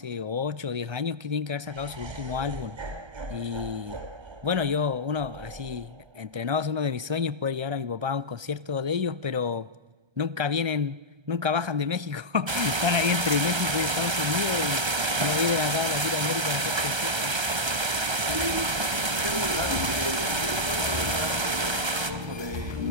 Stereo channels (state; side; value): late; left; 1.3 ms